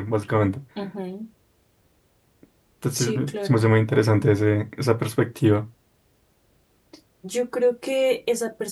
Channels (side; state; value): both; identical; correlation 1.00